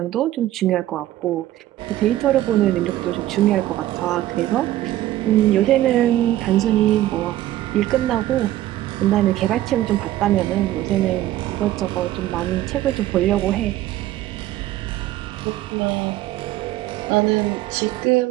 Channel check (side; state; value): left; quieter; 14.5 dB